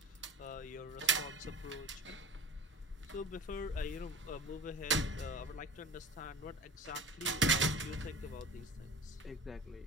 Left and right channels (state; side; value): normal; both; correlation 0.35